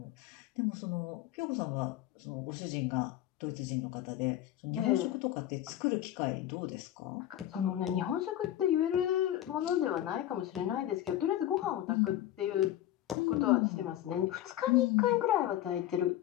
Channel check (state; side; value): quieter; right; 12.9 dB